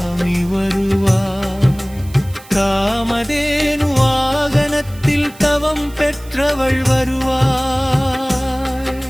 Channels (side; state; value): right; noise; hiss, 22 dB below the sound